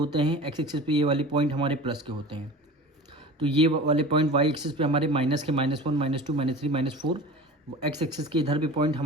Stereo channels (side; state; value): both; normal; correlation 0.36